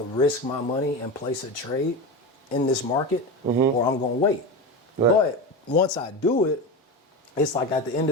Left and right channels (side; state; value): both; normal; correlation 0.22